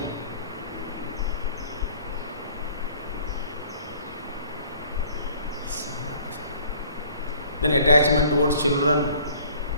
Then attachment towards children,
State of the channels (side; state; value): both; inverted; correlation -0.54